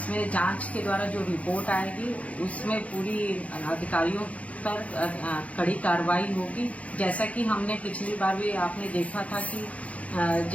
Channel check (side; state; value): right; late; 0.066 ms